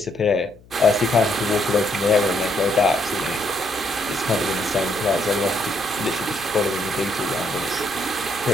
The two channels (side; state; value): left; noise; hum, 25 dB below the sound